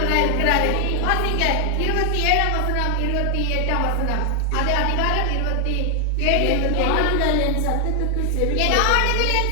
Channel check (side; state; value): both; different; correlation 0.00